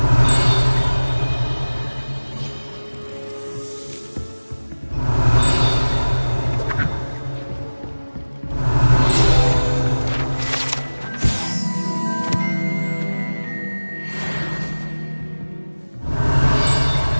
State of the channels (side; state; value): both; inverted; correlation -1.00